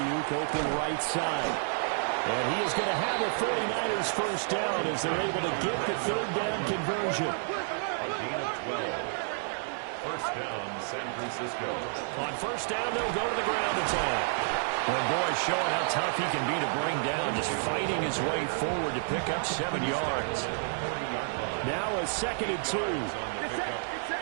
open right side. And he is going to have a 49ers 1st down as they're able to get the 3rd down conversion. A gain of 12. 1st down, San Francisco. On 1st down, they'll go to the ground attack. Well, boy, showing how tough he can be to bring down, just fighting his way forward to pick up 7 yards. Now a 2nd and 2.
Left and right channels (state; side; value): silent; left; digital silence